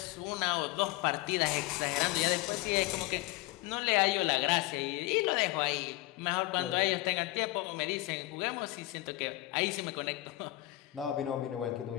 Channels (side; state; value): right; quieter; 18.9 dB